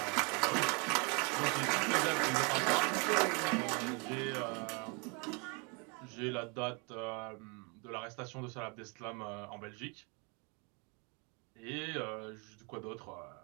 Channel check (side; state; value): left; quieter; 33.0 dB